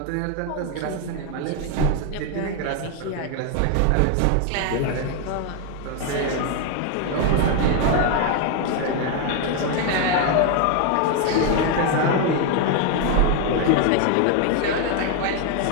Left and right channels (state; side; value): different; both; correlation 0.01